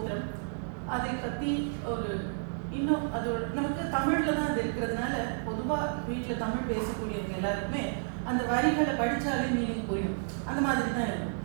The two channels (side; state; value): left; silent; digital silence